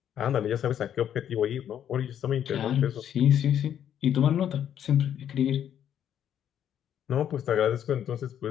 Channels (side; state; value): right; quieter; 9.8 dB